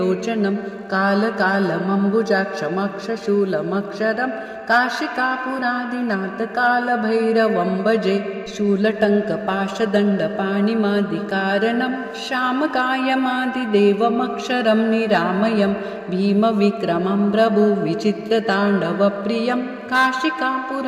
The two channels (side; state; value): both; identical; correlation 1.00